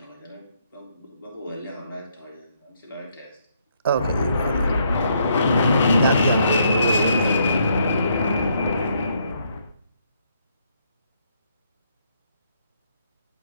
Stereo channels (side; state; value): both; inverted; correlation -0.72